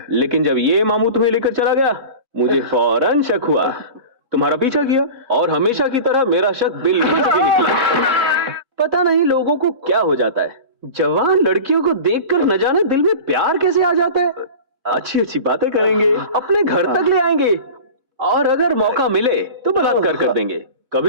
लेकिन जब ये मामू तुम्हें लेकर चला गया मुझे फौरन शक हुआ। तुम्हारा पीछा किया और हमेशा की तरह मेरा शक बिल्कुल सही निकला। पता नहीं लोगों को क्या हो जाता है, जवान लड़कियों को देखकर न जाने दिल में प्यार कैसे आ जाता है। अच्छी अच्छी बातें करेंगे, अपने घर तक ले आएंगे और अगर मौका मिले तो बलात्कार कर देंगे।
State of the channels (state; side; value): late; left; 4.0 ms